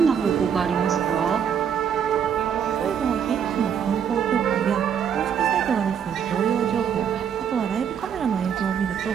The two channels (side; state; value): left; quieter; 8.0 dB